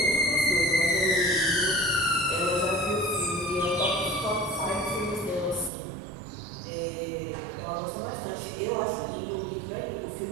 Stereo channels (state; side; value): drops out; left; at 5.7 s